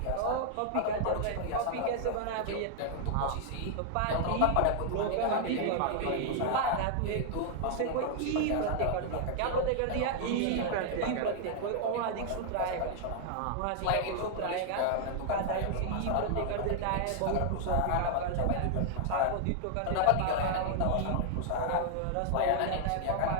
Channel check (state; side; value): different; both; correlation 0.00